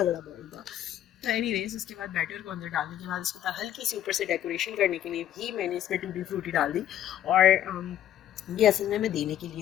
बड़ा बॉल था। तो एनीवेज उसके बाद बैटर को अंदर डालने के बाद इसके बाद हल्की सी ऊपर से डेकोरेशन करने के लिए भी मैंने इसमें टूटी फ्रूटी डाल दी। और ये असल में मैं देने के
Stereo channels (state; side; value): quieter; right; 11.5 dB